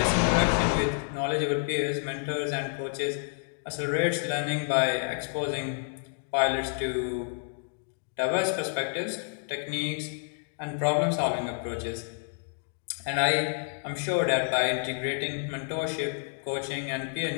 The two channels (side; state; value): right; silent; digital silence